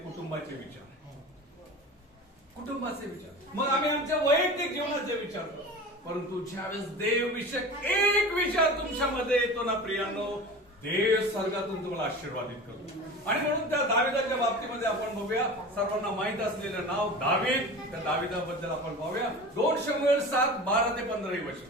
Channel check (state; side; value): normal; both; correlation 0.34